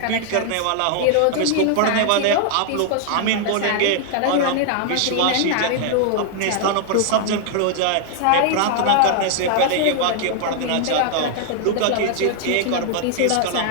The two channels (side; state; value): both; different; correlation 0.00